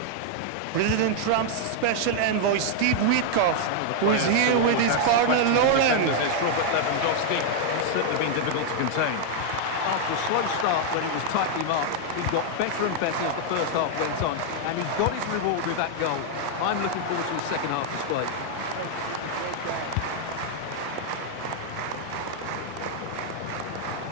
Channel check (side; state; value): both; different; correlation 0.00